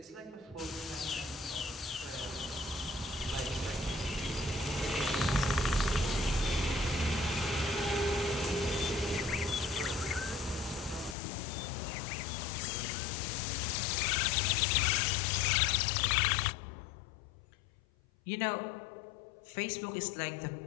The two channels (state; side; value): drops out; right; at 11.2 s